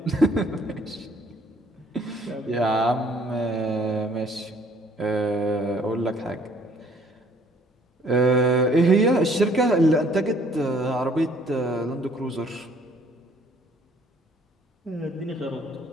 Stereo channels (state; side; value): normal; both; correlation 0.60